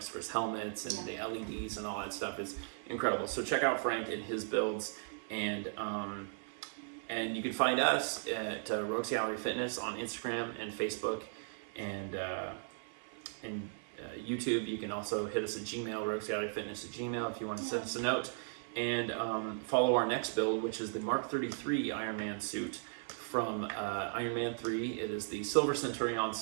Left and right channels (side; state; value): left; silent; 53 dB below the other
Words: for his helmets and the LEDs and all that stuff is incredible. So check out Frank and his builds, and you can find us at Rogues Gallery Fitness on Instagram and Facebook and YouTube. You can also hit us at Gmail, roguesgalleryfitness@gmail, if you want to send us a note, and follow our next build, which is the Mark 33 Iron Man suit from Iron Man 3. It is the Silver Centurion